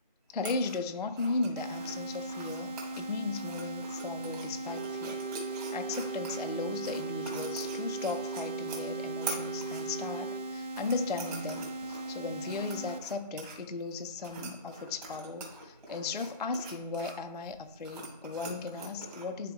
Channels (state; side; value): inverted; both; correlation -0.31